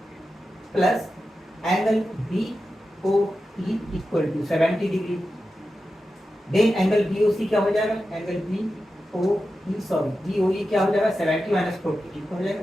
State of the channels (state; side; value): normal; both; correlation 0.91